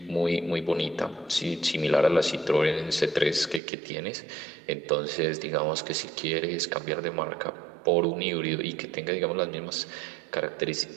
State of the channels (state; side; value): drops out; left; at 3.6 s